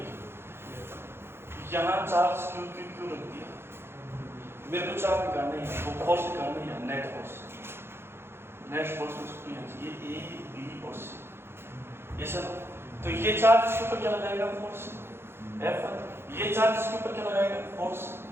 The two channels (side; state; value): left; late; 0.11 ms